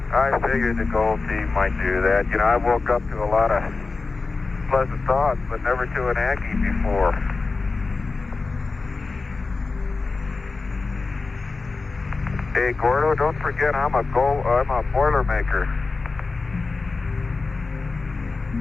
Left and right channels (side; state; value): right; quieter; 4.0 dB